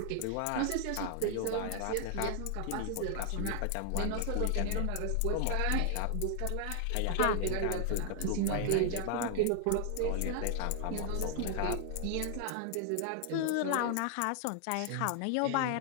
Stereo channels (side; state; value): both; different; correlation 0.00